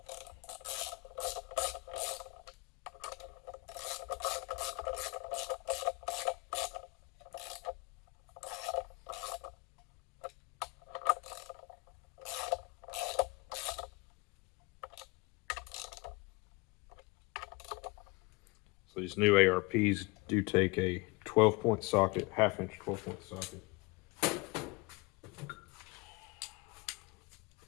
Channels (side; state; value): right; quieter; 26.4 dB